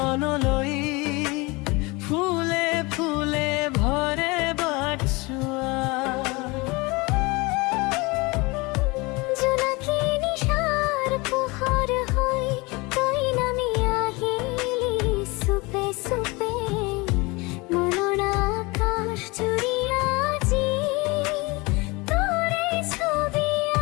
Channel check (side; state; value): right; quieter; 25.1 dB